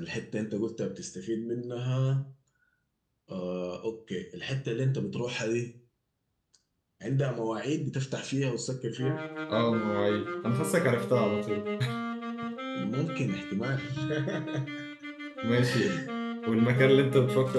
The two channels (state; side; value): identical; both; correlation 1.00